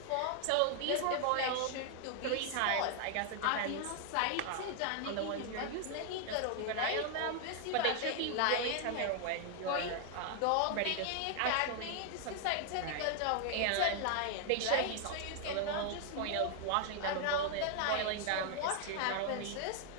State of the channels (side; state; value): both; different; correlation 0.00